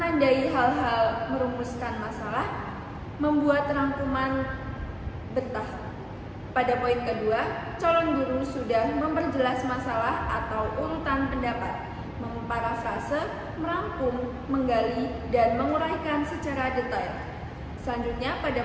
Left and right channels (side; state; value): both; identical; correlation 1.00